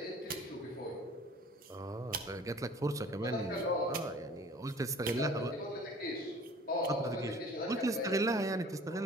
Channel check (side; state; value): both; normal; correlation 0.48